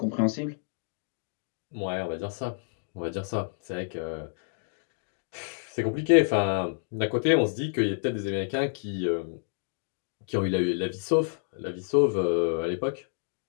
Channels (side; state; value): right; silent; digital silence